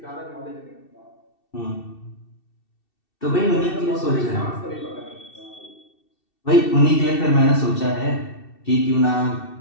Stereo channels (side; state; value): right; late; 2.7 ms